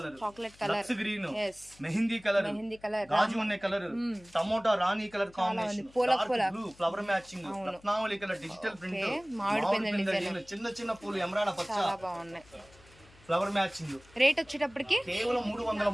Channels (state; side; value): noise; left; hum, 26 dB below the sound